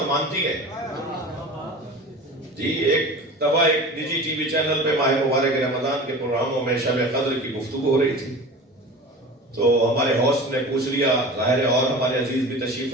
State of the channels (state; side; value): normal; both; correlation 0.35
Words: مانتی ہے. جی ایک دفعہ ایک نجی ٹی وی چینل پہ ماہ مبارک رمضان کے پروگراموں میں شب قدر کی گفتگو ہو رہی تھی. تو ہمارے ہوسٹ نے پوچھ لیا، ظاہر ہے اور ہمارے عزیز بھی تشریف